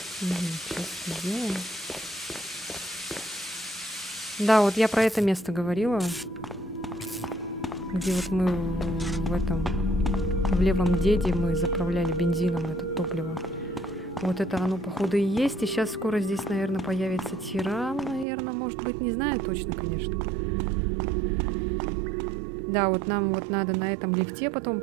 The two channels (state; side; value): drops out; left; at 18.2 s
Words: Сейчас это сделаем. Да, вот я про это место говорила. Где вот мы в этом... В левом деде мы заправляли бензином это топливо. Вот это оно, походу, и есть. И сейчас скоро здесь, наверное, появится тиран. Наверное, может быть, не знаю точно, конечно. Да, вот нам вот надо на этом лифте потом